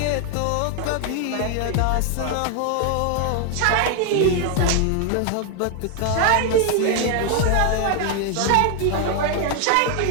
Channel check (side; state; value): both; different; correlation 0.01